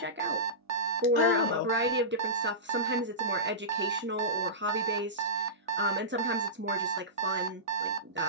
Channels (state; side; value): normal; both; correlation -0.19